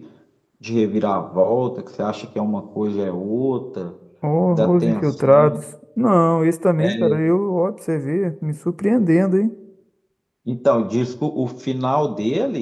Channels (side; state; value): both; identical; correlation 1.00